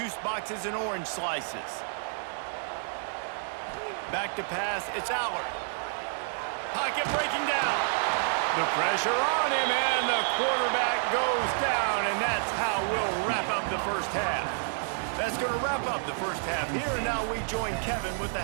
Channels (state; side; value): silent; left; digital silence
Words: boxes and orange slices. Back to pass, it's Aller. Pocket breaking down. The pressure on him, and the quarterback goes down, and that's how we'll wrap up the first half. That's going to wrap up the first half here, and now we join Kevin with the